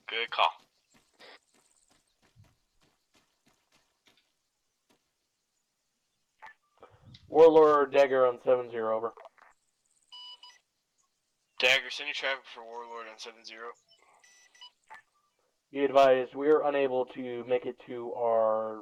Good call. Warlord Dagger on 7-0, over. Dagger, send your traffic for Warlord on 7-0. Be advised, we are unable to make it to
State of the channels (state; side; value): identical; both; correlation 1.00